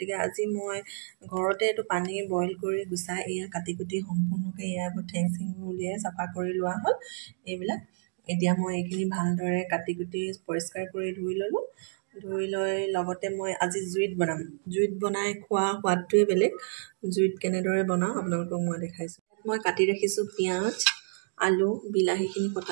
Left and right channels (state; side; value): silent; left; digital silence